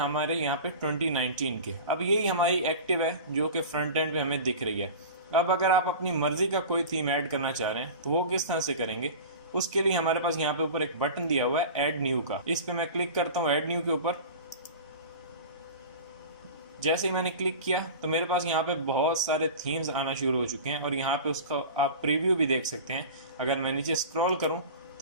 यहाँ पे 2019 के। अब यही हमारी एक्टिव है जो कि फ्रंट एंड पे हमें दिख रही है। अब अगर आप अपनी मर्जी का कोई थीम ऐड करना चाह रहे हैं तो वो किस तरह से करेंगे, उसके लिए हमारे पास यहाँ पे ऊपर एक बटन दिया हुआ है ऐड न्यू का। इस पे मैं क्लिक करता हूँ ऐड न्यू के ऊपर। जैसे ही मैंने क्लिक किया तो मेरे पास यहाँ पे बहुत सारे थीम्स आना शुरू हो चुके हैं और यहाँ पे उसका आप प्रीव्यू भी देख सकते हैं। अगर मैं नीचे स्क्रॉल करूँ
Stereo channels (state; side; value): inverted; both; correlation -0.34